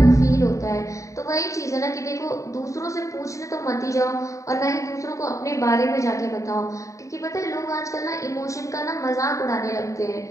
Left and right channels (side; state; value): right; late; 0.16 ms